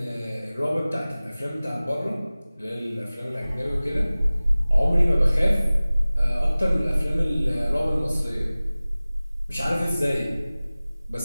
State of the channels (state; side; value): inverted; both; correlation -0.98